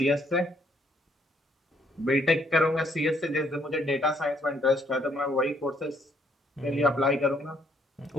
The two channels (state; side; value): normal; both; correlation 0.69